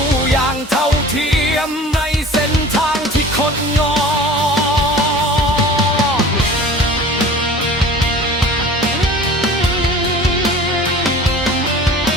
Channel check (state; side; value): normal; both; correlation 0.42